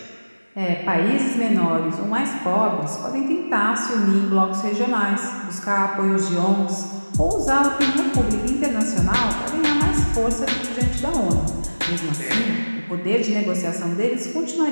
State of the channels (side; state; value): both; inverted; correlation -1.00